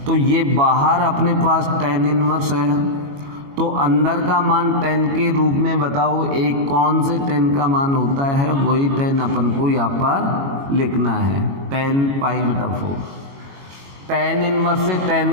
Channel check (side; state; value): left; late; 22 ms